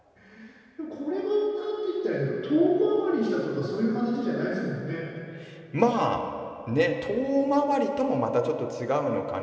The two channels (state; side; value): identical; both; correlation 1.00